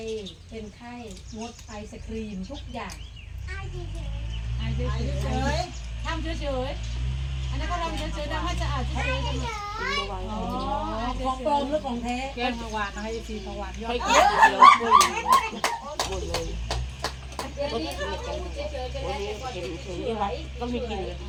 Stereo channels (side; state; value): both; identical; correlation 1.00